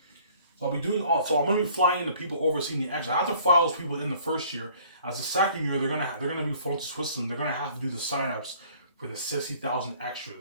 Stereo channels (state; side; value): inverted; both; correlation -0.55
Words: So I'll be doing all. So I'm going to be flying in the people overseeing the extras. I have to fly those people in the first year. As the second year, they're gonna be flown to Switzerland. They're gonna have to do the sign-ups for the 60,000